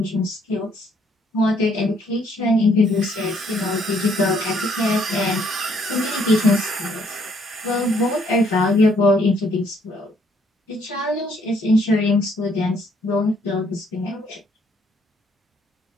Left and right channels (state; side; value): normal; both; correlation 0.67